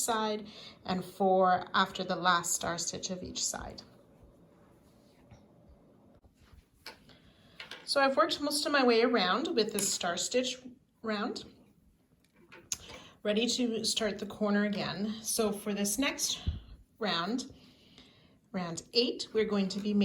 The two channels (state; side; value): identical; both; correlation 1.00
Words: and 4 after the last star stitch of each side. So I've worked most of my way around with this star stitch round, ready to start the corner again. So for this next round, round 8, we're going to be